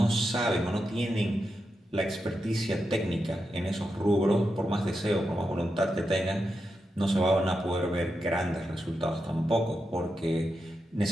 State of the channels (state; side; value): normal; both; correlation 0.87